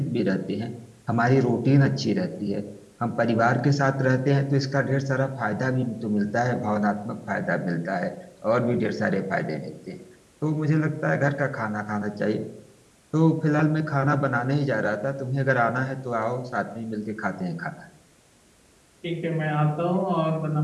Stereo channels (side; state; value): both; identical; correlation 1.00